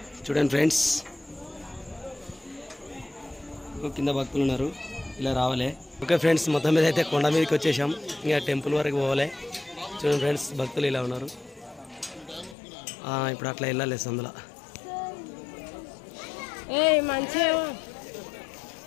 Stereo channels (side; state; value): right; drops out; at 12.6 s